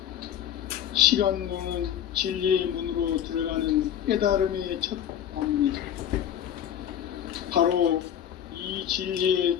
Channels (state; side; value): quieter; right; 9.9 dB